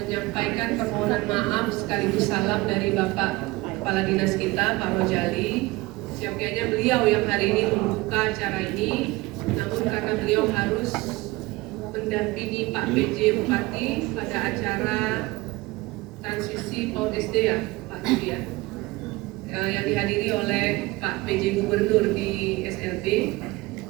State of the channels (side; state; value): left; quieter; 21.2 dB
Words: permohonan maaf sekaligus salam dari Bapak Kepala Dinas kita, Pak Rojali. Siapnya beliau yang hari ini membuka acara ini, namun karena beliau harus mendampingi Pak PJ Bupati pada acara transisi PAUD SD ya, Pak Yudi ya, yang dihadiri oleh Pak PJ Gubernur di SLB.